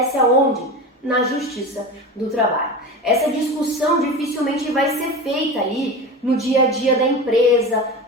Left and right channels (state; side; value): normal; both; correlation 0.28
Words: aonde? Na Justiça do Trabalho. Essa discussão dificilmente vai ser feita ali no dia a dia da empresa